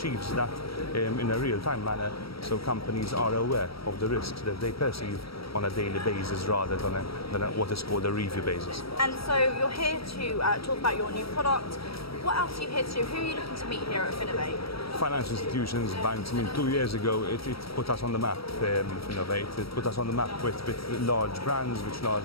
that in a real-time manner, so companies are aware of the risks that they perceive on a daily basis rather than what is called a review basis. And so you're here to talk about your new product. What else are you here to do? Who are you looking to meet here at Finovate? Financial institutions, banks. 2 years ago it put us on the map, Finovate. It put us on the map with large brands, with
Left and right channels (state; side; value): late; right; 0.75 ms